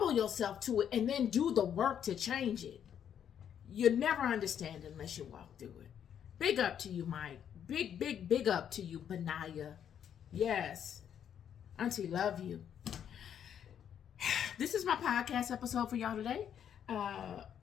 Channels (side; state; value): right; quieter; 9.0 dB